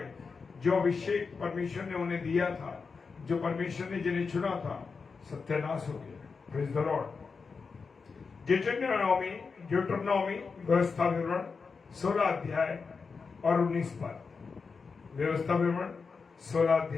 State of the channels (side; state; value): right; quieter; 5.0 dB